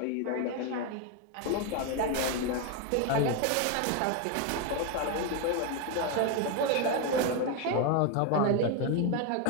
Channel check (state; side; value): different; both; correlation 0.02